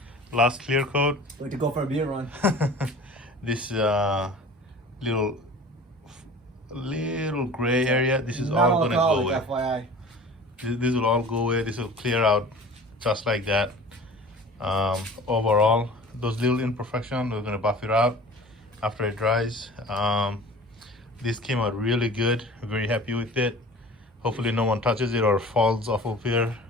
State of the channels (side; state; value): both; normal; correlation 0.42